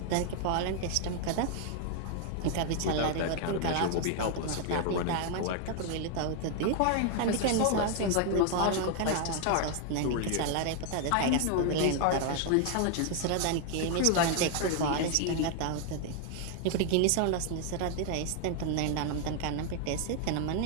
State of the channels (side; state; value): both; different; correlation 0.00